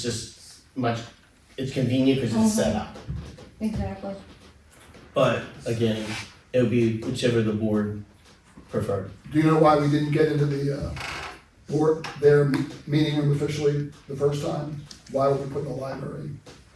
just much, it's convenient because it's set up. exactly. But again, it would be whichever the board preferred. Do you know why we didn't get into the, board, their meeting room officially the first time? Why were we put in the library?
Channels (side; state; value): both; identical; correlation 1.00